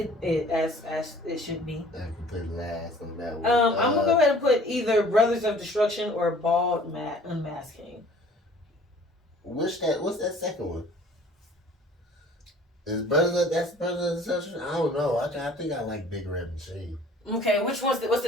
as it should be. I can put last on that one. I'm gonna go ahead and put either Brothers of Destruction or Bald Unmasked Kane. What's that second one? Is that's Brothers of Destruction? I don't know. I think I like Big Red Machine. Okay, what's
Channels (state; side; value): normal; both; correlation 0.51